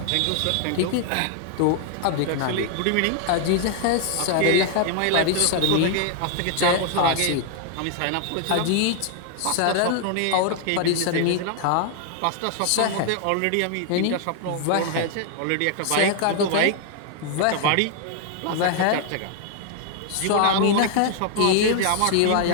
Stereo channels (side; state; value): both; different; correlation 0.00